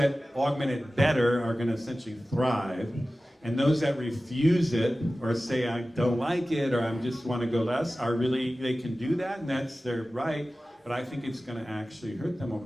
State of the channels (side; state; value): both; normal; correlation 0.96